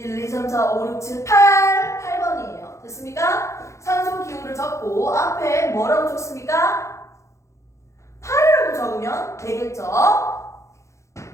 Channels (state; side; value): late; right; 0.14 ms